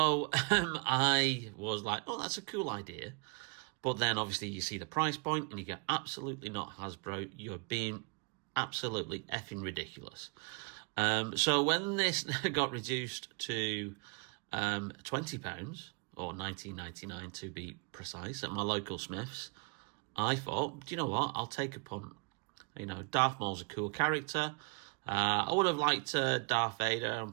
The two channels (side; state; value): left; quieter; 34.4 dB